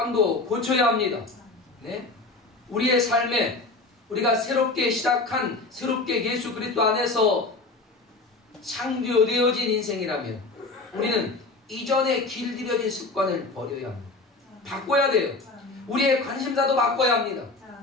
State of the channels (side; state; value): right; quieter; 3.4 dB